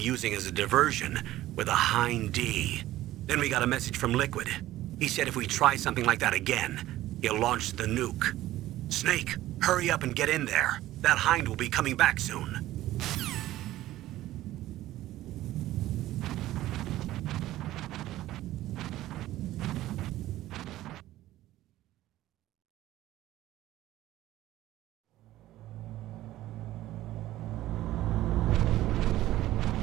as a diversion with a Hind D. Then we got a message from Liquid. He said if we try something like that again, he'll launch the nuke. Snake, hurry up and get in there. That Hind will be coming back soon.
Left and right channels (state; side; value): quieter; left; 15.1 dB